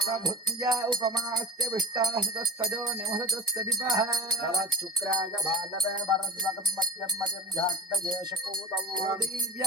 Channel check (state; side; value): normal; both; correlation 0.33